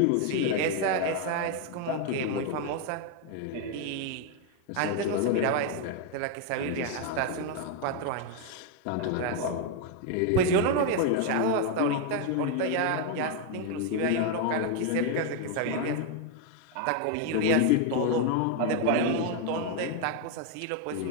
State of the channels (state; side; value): different; both; correlation 0.01